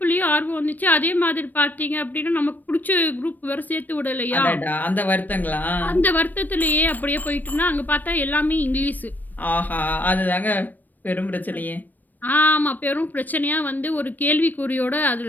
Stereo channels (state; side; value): late; right; 0.087 ms